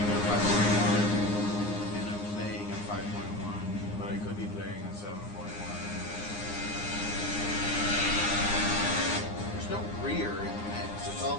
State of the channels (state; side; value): late; right; 9.7 ms